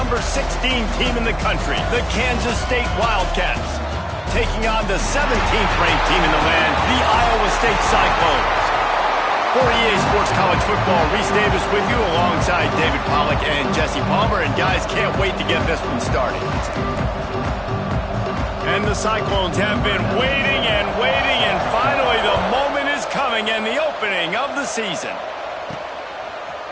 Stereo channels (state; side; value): identical; both; correlation 1.00